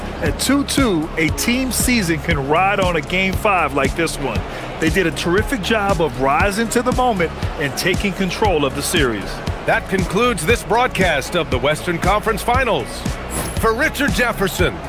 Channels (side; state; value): both; identical; correlation 1.00